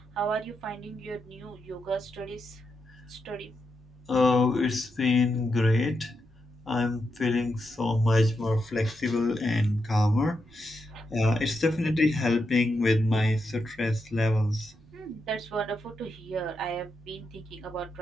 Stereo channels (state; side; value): normal; both; correlation 0.85